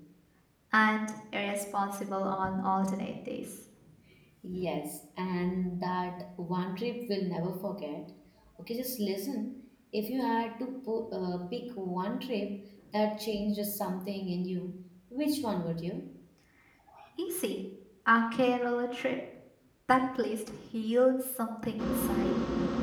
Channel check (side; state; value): both; identical; correlation 1.00